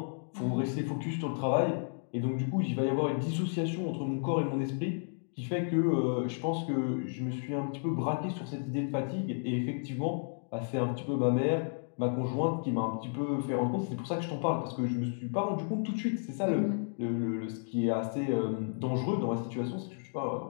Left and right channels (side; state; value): right; silent; digital silence